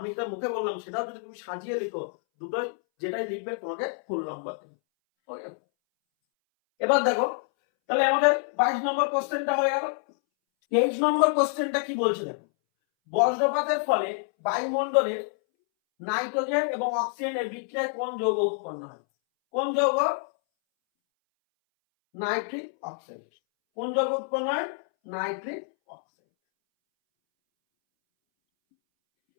যেটা মুখে বললাম সেটাও যদি তুমি সাজিয়ে লিখো, দুটোই যেটাই লিখবে তোমাকে ফুল নাম্বার দেবে। ওকে, এবার দেখো, তাহলে আমাদের 22 নম্বর কোশ্চেনটা হয়ে গেল। 23 নম্বর কোশ্চেনটা কি বলছে দেখো, বজ্রপাতের ফলে বায়ুমণ্ডলের নাইট্রোজেন এবং অক্সিজেনের বিক্রিয়ায় কোন যৌগ উৎপন্ন হয়? কোন যৌগ? Nitric oxide. কোন যৌগ উৎপন্ন হয়? Nitric oxide.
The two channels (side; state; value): right; silent; 60 dB below the other